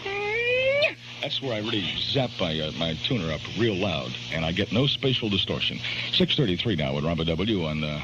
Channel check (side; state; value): both; identical; correlation 1.00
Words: That's where I really zap my tuner up real loud, and I get no spatial distortion. 6:33 now with Robert W. on